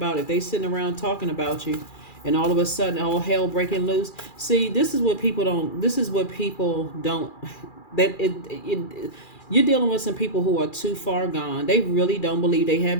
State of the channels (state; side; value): late; right; 2.4 ms